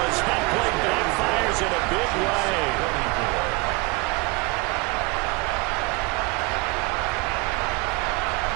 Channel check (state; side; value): quieter; left; 24.8 dB